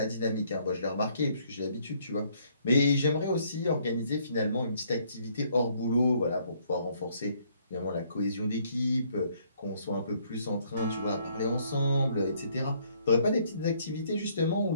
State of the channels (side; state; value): both; inverted; correlation -0.66